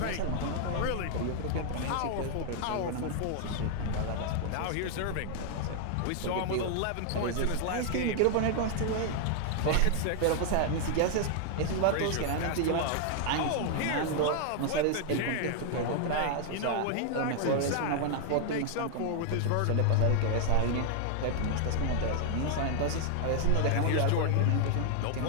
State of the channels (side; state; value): both; different; correlation 0.00